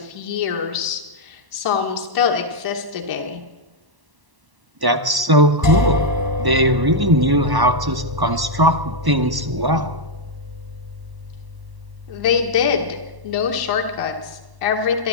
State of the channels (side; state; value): left; late; 1.1 ms